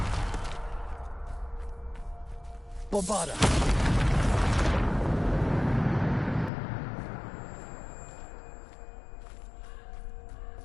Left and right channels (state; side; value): drops out; right; at 6.5 s